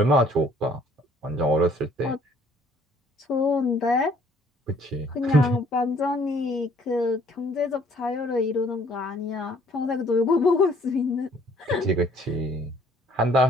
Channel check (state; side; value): normal; both; correlation 0.60